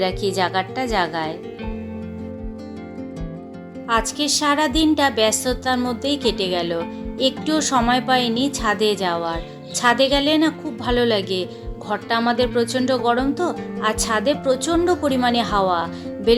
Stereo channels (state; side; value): identical; both; correlation 1.00